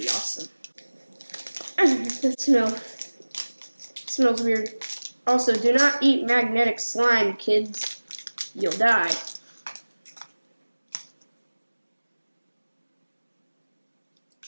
awesome. That smells weird. Also, do not eat magnetic slime, kids. You'll die.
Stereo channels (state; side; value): inverted; both; correlation -1.00